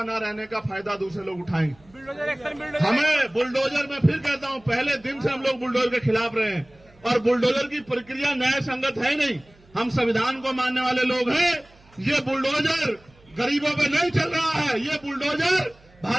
न रहने का फायदा दूसरे लोग उठाएंगे। हमें बुलडोजर, में फिर कहता हूं, पहले दिन से हम लोग बुलडोजर के खिलाफ रहे हैं और बुलडोजर की प्रक्रिया न्याय संगत है नहीं। हम संविधान को मानने वाले लोग हैं। ये बुलडोजर गरीबों पे नहीं चल रहा है, ये बुलडोजर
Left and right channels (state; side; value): noise; right; hum, 28 dB below the sound